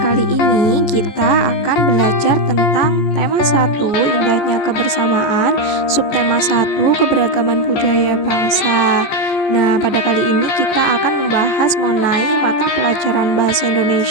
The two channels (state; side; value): late; right; 14 ms